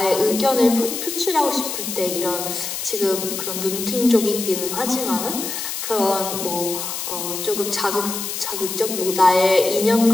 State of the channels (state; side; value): noise; left; hiss, 5 dB below the sound